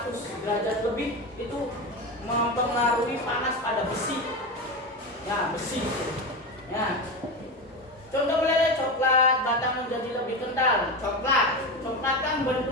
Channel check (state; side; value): normal; both; correlation 0.20